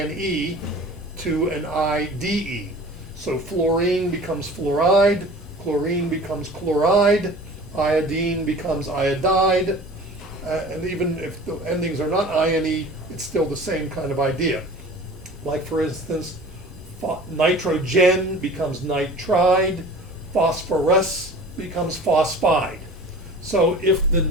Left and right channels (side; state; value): both; normal; correlation 0.42